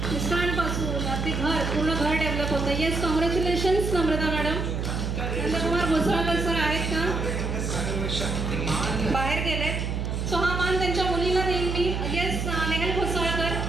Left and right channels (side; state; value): right; noise; hum, 2 dB below the sound